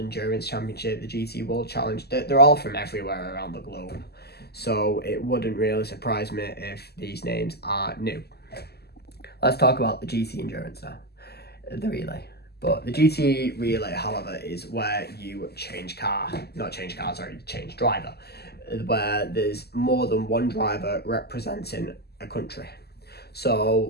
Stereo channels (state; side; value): late; right; 0.47 ms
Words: Championship, the GT World Challenge. They're all from everywhere around the globe, so it wouldn't really surprise me if these names are new. Let's talk about the GT Endurance now. the relay. But the GT relay, however, is where you change driver, where there's more than one driver representing a country.